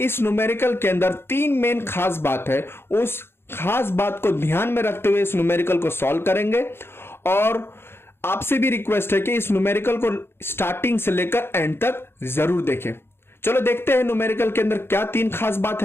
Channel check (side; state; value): right; late; 0.11 ms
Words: इस न्यूमेरिकल के अंदर तीन मेन खास बात है। उस खास बात को ध्यान में रखते हुए इस न्यूमेरिकल को सॉल्व करेंगे और आपसे भी रिक्वेस्ट है कि इस न्यूमेरिकल को स्टार्टिंग से लेकर एंड तक जरूर देखें। चलो देखते हैं न्यूमेरिकल के अंदर क्या तीन खास बात